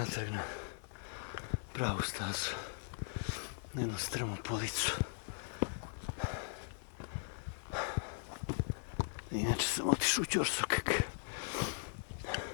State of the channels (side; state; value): right; silent; 52 dB below the other